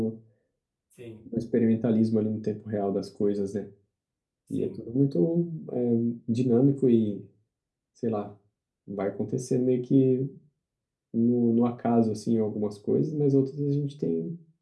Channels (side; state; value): both; identical; correlation 1.00